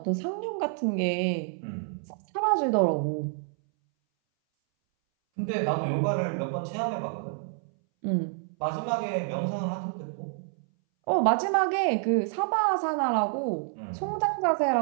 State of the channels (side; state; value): left; silent; 59 dB below the other